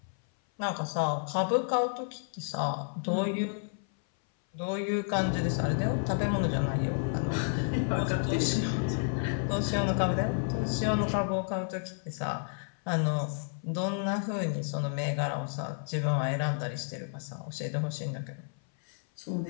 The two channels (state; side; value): silent; right; 57 dB below the other